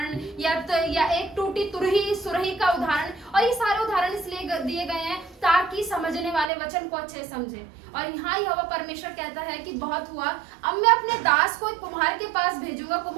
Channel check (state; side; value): drops out; left; at 6.5 s